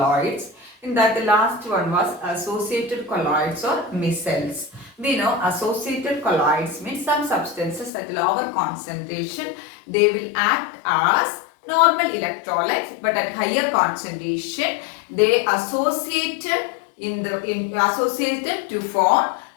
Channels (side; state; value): right; drops out; at 7.9 s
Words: In that, the last one was associated colloids or micelles. We know associated colloids means some substances at lower concentration they will act as normal electrolytes, but at higher concentration they associated to form